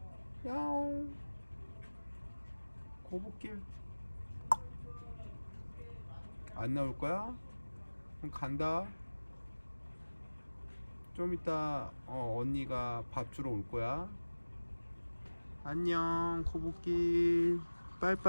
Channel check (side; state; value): both; inverted; correlation -1.00